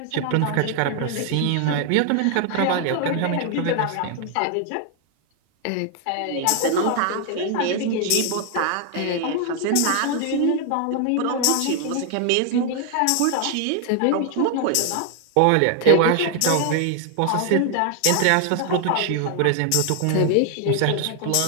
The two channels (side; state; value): both; different; correlation 0.00